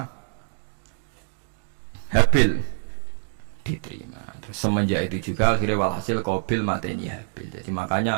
Habil diterima. Terus semenjak itu juga akhirnya walhasil Qabil mateni Habil. Jadi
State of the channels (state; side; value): silent; left; digital silence